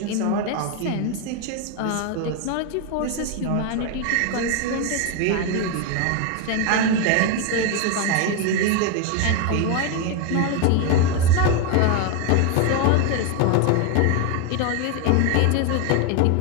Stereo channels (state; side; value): different; both; correlation 0.01